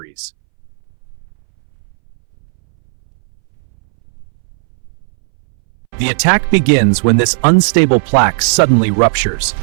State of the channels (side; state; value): left; silent; 65 dB below the other